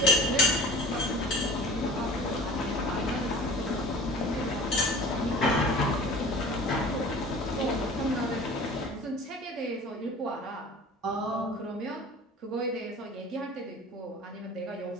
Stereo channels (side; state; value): both; normal; correlation 0.42